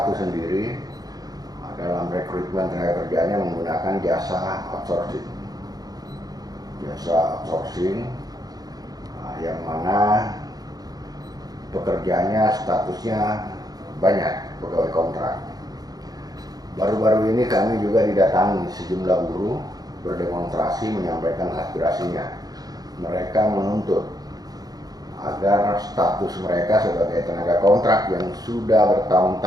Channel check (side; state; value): left; late; 0.19 ms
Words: sendiri dalam rekrutmen tenaga kerjanya menggunakan jasa outsourcing. Yang mana pekerjaannya statusnya banyak pegawai kontrak. Baru-baru ini kami juga didatangi sejumlah buruh berdemonstrasi menyampaikan aspirasinya. Mereka menuntut agar status mereka sebagai tenaga kontrak yang sudah